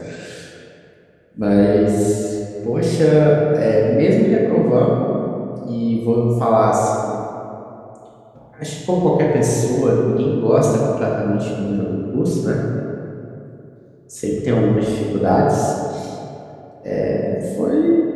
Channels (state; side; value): identical; both; correlation 1.00